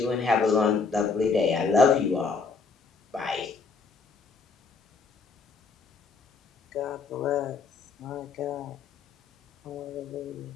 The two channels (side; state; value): right; quieter; 4.8 dB